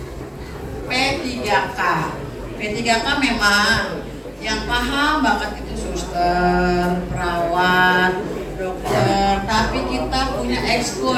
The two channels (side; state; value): both; identical; correlation 1.00